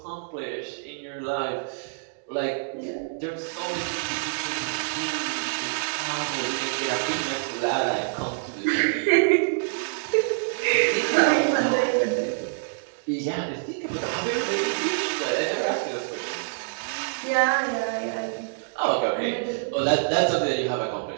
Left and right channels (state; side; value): silent; left; digital silence